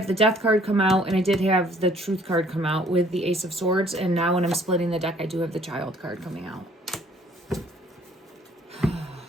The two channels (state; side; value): normal; both; correlation 0.58